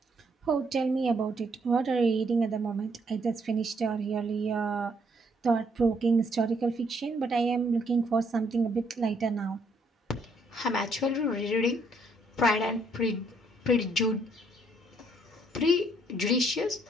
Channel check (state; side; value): normal; both; correlation 0.69